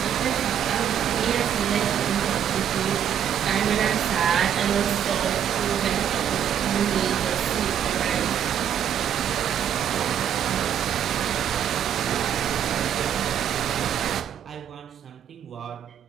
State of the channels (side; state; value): left; quieter; 9.2 dB